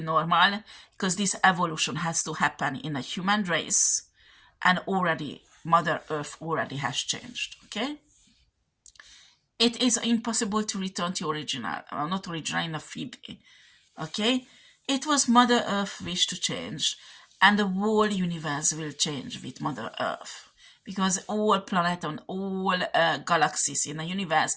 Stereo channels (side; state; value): both; identical; correlation 1.00